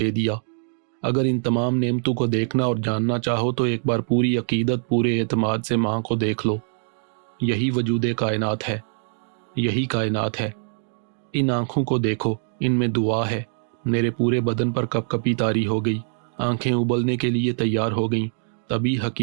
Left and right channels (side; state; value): left; silent; digital silence